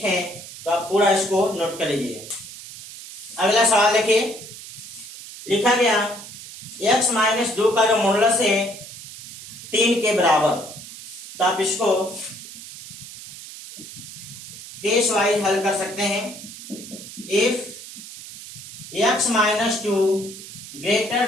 हैं। तो आप पूरा इसको नोट कर लीजिए। अगला सवाल देखिए, लिखा गया x - 2 का जो मॉडुलस है 3 के बराबर। तो आप इसको केस वाइज हल कर सकते हैं। If x - 2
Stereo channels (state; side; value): noise; right; hiss, 14 dB below the sound